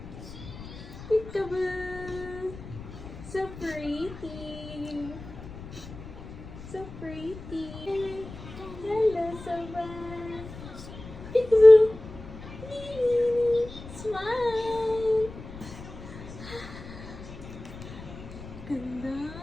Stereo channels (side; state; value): left; noise; rumble, 14 dB below the sound